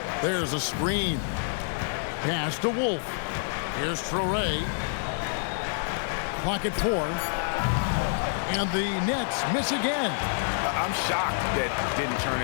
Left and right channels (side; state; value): right; silent; digital silence